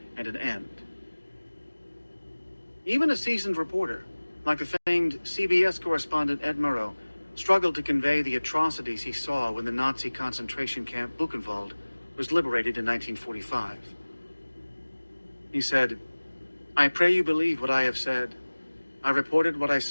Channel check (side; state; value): both; inverted; correlation -1.00